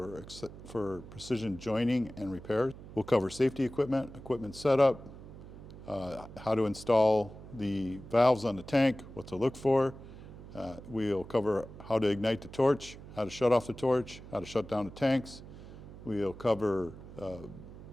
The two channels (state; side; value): noise; right; hum, 15 dB below the sound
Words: precision joining and repair. We'll cover safety equipment setup, how to install the valves on the tank, what to look for. We'll cover how to ignite the torch, how to shut off the torch, how to shut down the tanks. We'll cover